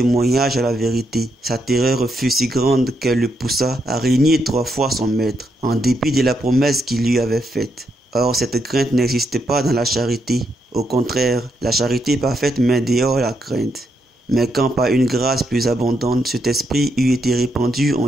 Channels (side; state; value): both; normal; correlation 0.79